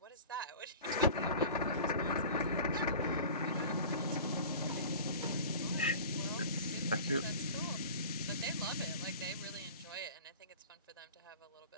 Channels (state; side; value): inverted; both; correlation -0.39